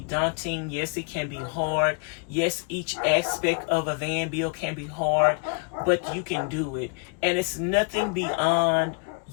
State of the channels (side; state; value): right; quieter; 38.9 dB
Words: daunting. Yes, it can be hard. Yes, each aspect of a van bill can be hard, but you can do it. And it's nothing beyond